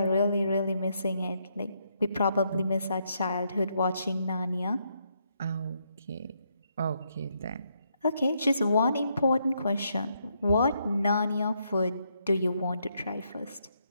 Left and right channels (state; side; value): inverted; both; correlation -0.77